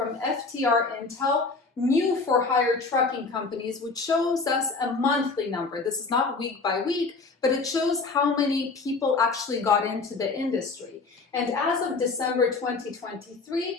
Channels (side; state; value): right; quieter; 4.0 dB